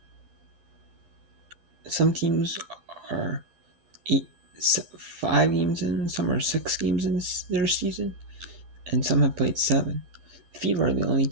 Some teams are 5 games in, some are 6 games in their season, and some have played 7. The Fever are the only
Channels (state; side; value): late; left; 12 ms